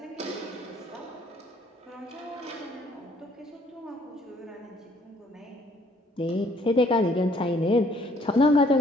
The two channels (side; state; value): both; normal; correlation 0.62